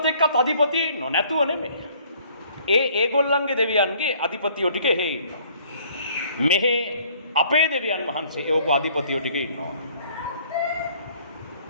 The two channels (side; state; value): both; inverted; correlation -0.59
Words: එක්කත් අධිපතිය ඉන්නව නැතුව නෙමෙයි. ඒගොල්ලන්ගේ දෙවියන්ගේ අධිපතියෝ ටික එහෙ ඉන්නවා. මෙහෙ අපේ දෙවියන් වහන්සේ එවපු අධිපතියෝ ටික ඉන්නවා.